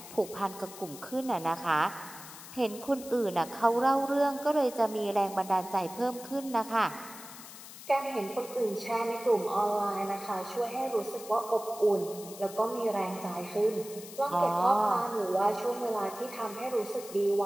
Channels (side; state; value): left; noise; hiss, 15 dB below the sound